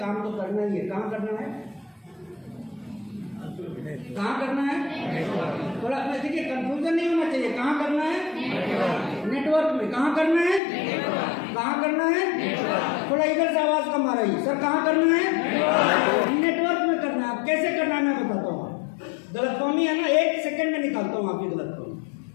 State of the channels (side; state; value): right; drops out; at 10.6 s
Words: तो करना ही है। कहाँ करना है? कहाँ करना है? थोड़ा देखिए कंफ्यूजन नहीं होना चाहिए। कहाँ करना है? नेटवर्क में। कहाँ करना है? कहाँ करना है? थोड़ा इधर से आवाज कम आ रही है सर। कहाँ करना है? नेटवर्क में करना है। अब कैसे करना है मैं बताता हूँ। गलतफहमी है ना, 1 सेकंड में निकालता हूँ आपकी गलतफहमी।